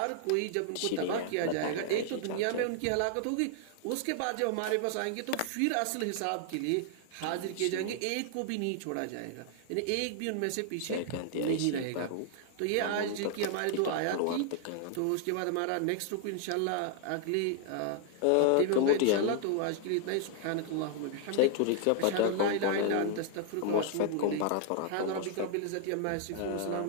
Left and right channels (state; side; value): different; both; correlation 0.00